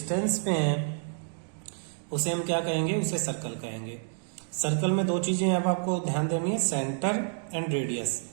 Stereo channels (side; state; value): left; silent; digital silence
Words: पे है उसे हम क्या कहेंगे? उसे सर्कल कहेंगे। सर्कल में दो चीजें अब आपको ध्यान देनी है, सेंटर एंड रेडियस।